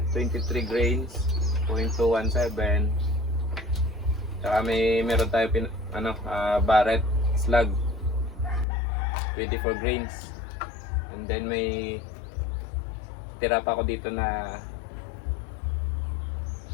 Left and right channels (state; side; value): drops out; right; at 8.7 s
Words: 23 grains, 0.217. Tsaka meron tayo Barrett slug 24 grains, and then may tira pa ako dito na